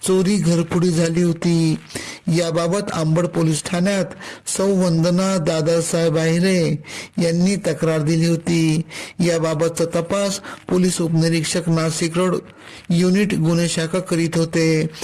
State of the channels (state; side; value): identical; both; correlation 1.00